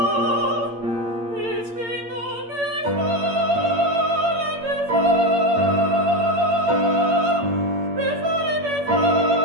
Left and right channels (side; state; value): left; late; 8.7 ms